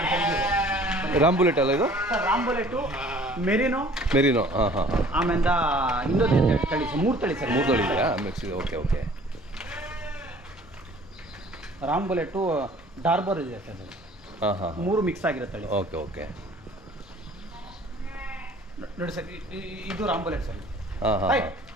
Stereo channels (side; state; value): both; normal; correlation 0.52